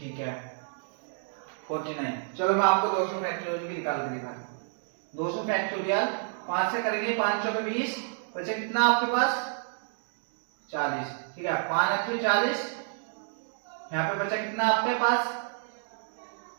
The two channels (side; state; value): left; silent; 58 dB below the other